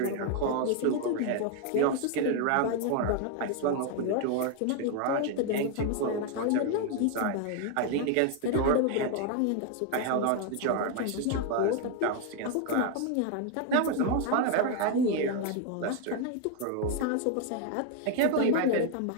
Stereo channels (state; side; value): different; both; correlation 0.01